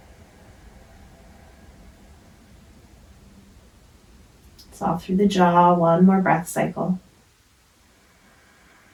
Soft through the jaw, one more breath cycle.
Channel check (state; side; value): identical; both; correlation 1.00